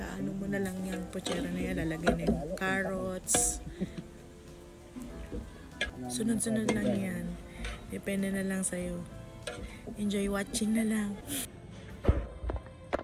mo na lang yung pochera na yan. Lalagay na yung carrots. Sunod-sunod lang yan. Depende na lang sa'yo. Enjoy watching na lang.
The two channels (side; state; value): both; identical; correlation 1.00